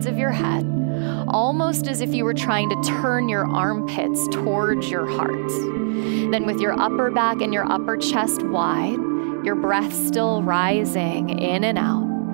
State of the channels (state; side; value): silent; left; digital silence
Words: of your head, almost as if you were trying to turn your armpits towards your heart. Then with your upper back and your upper chest wide, your breath still rising in and